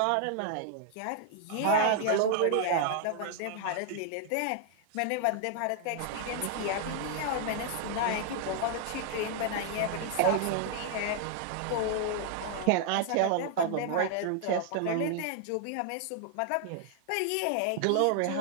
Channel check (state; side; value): different; both; correlation 0.00